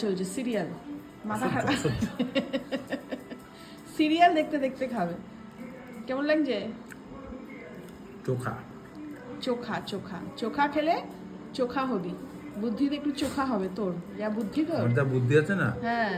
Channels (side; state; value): both; identical; correlation 1.00